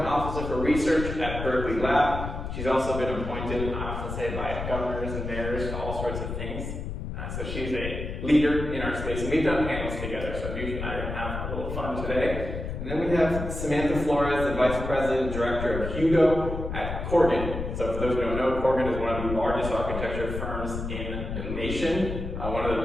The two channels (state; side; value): noise; left; rumble, 5 dB below the sound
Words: Officer for Research at Berkeley Lab. She's also been appointed, I often say, by governors and mayors to all sorts of things. So she's a leader in our space, and we've done panels together, so Newsha and I are going to have a little fun today. And then we have Samantha Flores, the Vice President, Director of Hugo at Corgan. So for those who don't know, Corgan is one of the largest architecture firms in the nation, one of the